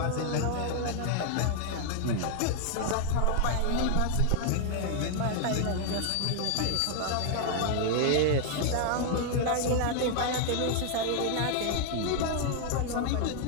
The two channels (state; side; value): different; both; correlation 0.00